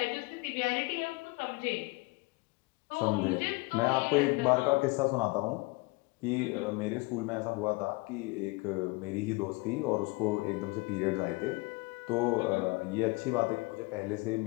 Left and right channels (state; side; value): quieter; right; 25.5 dB